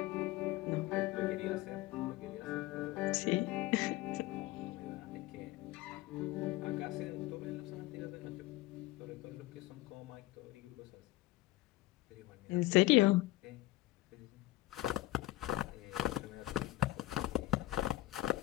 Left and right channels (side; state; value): right; quieter; 17.3 dB